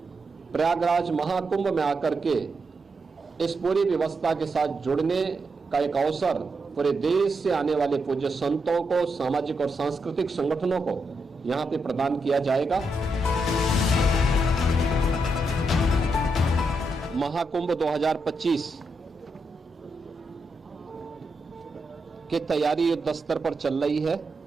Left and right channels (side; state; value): both; normal; correlation 0.83